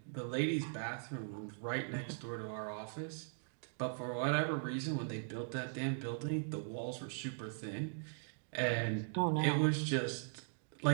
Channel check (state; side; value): silent; left; digital silence